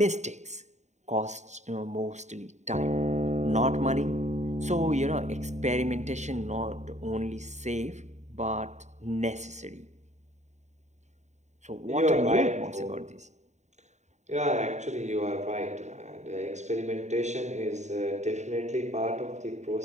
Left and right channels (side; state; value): left; late; 0.34 ms